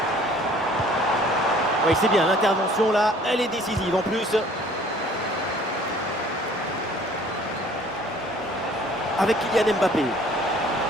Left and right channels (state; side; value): normal; both; correlation 0.54